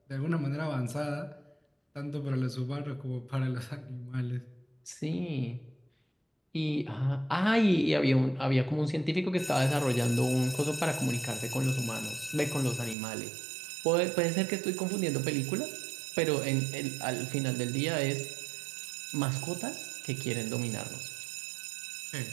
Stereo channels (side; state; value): left; drops out; at 13.0 s